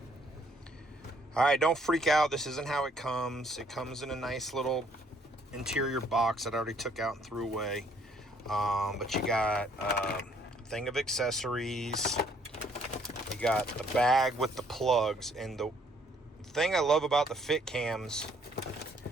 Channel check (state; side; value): normal; both; correlation 0.65